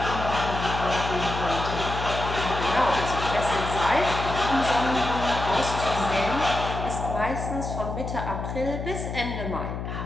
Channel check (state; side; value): noise; left; hum, 5 dB below the sound